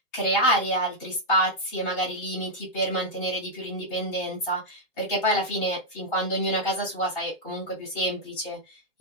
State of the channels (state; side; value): late; right; 2.8 ms